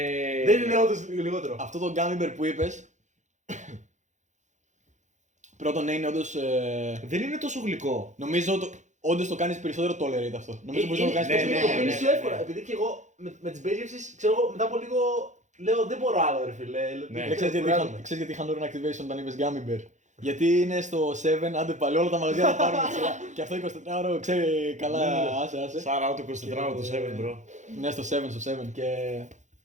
Δεν είναι όντως λιγότερο. Αυτό το gummy bear που είπες, πρώτον ναι, είναι όντως. Δεν είναι τόσο γλυκό. Νομίζω όντως το κάνεις περισσότερο tolerate αυτό. Νομίζω μπορείς να το κάνεις ναι, περισσότερο Το ναι, πίνεις tolerate. πιο εύκολα. Επειδή και εγώ με τις μπέγευσεις, ξέρω εγώ, μετά από λίγο λέω δεν μπορώ άλλο ρε φίλε. Ναι. Ξέρεις γιατί είχαν όρουν activation όταν είπες gummy bear. Γιατί είναι στο 7, άντε πάλι όλα τα μαγαζιά θα πάρουν σειρά. Και αυτό 24ωρο ξέρει καλά, άσε. Σάρα το 24 το 7, bro. Ναι, στο 7 και.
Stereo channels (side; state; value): left; late; 0.35 ms